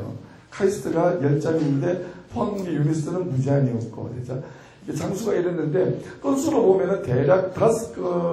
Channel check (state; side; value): identical; both; correlation 1.00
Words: 카이스트가 10장인데 포항공대 유니스트는 무제한이었고, 그렇죠? 장수가 이랬는데 건수로 보면은 대략